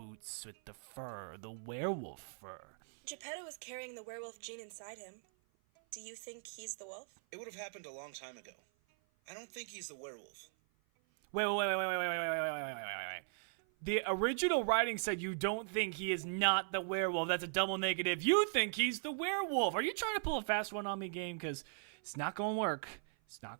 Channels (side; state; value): left; silent; 52 dB below the other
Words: with the fur, the werewolf fur. Geppetto is carrying the werewolf gene inside him. Do you think he's the wolf? It would have happened a long time ago. I don't think he's the werewolf. Wait. The original writing said you don't think he is not the werewolf. That's a double negative. You think he's the werewolf. Are you trying to pull a fast one on me, game? Because it's not going to work. It's not